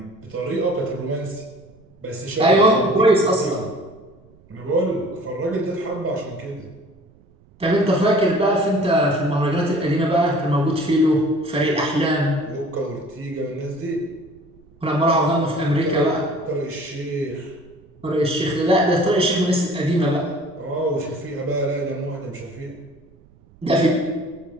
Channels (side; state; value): right; noise; rumble, 28 dB below the sound